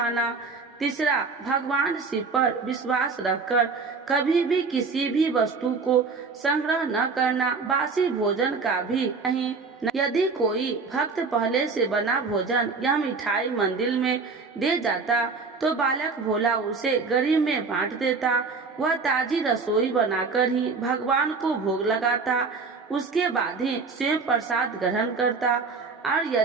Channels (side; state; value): left; quieter; 4.6 dB